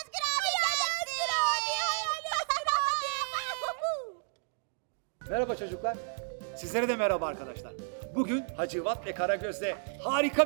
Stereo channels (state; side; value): silent; left; digital silence